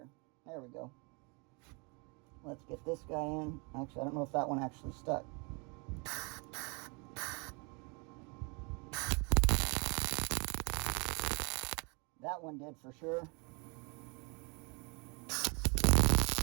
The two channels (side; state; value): left; quieter; 31.8 dB